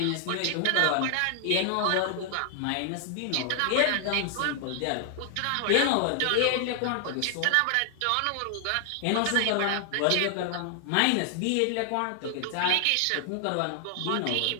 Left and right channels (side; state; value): both; different; correlation 0.00